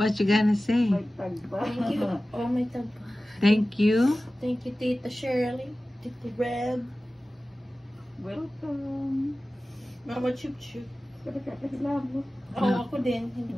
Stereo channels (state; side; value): normal; both; correlation 0.96